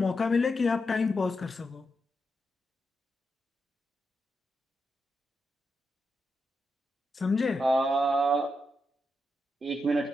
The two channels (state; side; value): normal; both; correlation 0.85